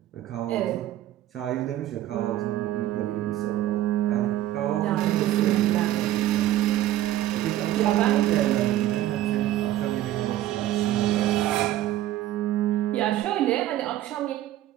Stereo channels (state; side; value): quieter; left; 13.6 dB